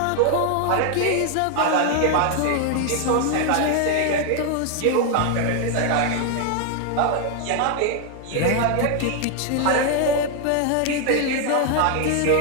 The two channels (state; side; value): different; both; correlation 0.00